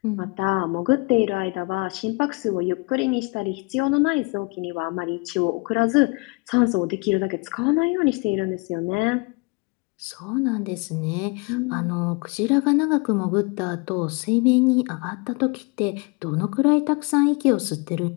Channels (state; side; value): quieter; right; 29.1 dB